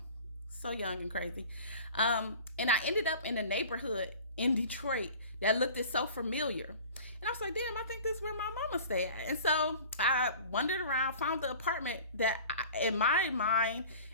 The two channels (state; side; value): inverted; both; correlation -0.43